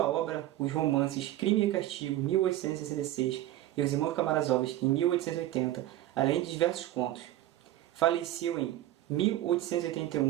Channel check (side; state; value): left; quieter; 14.2 dB